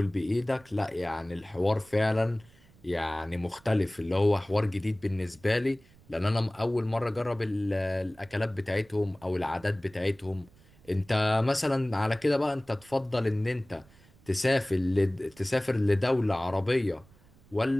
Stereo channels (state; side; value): noise; right; rumble, 27 dB below the sound